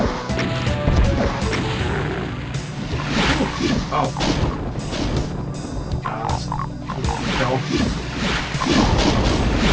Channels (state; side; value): identical; both; correlation 1.00